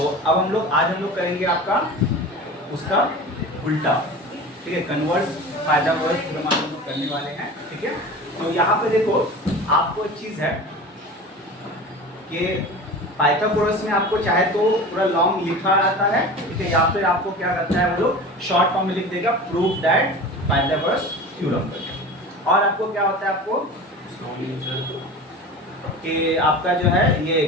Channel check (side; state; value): both; normal; correlation 0.34